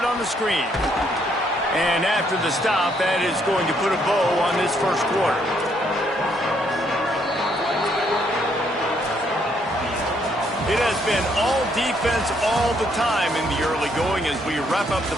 on the screen. And after the stop, that is going to put a bow on this first quarter. It has been all defense all the time in the early going as we wrap up the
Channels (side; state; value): both; normal; correlation 0.71